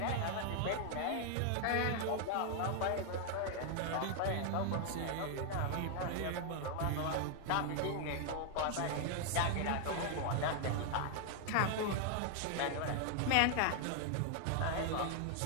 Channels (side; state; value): both; different; correlation 0.00